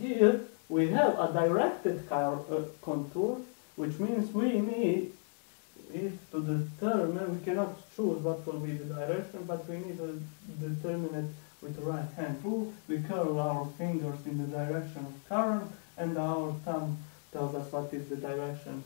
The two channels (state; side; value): silent; right; 55 dB below the other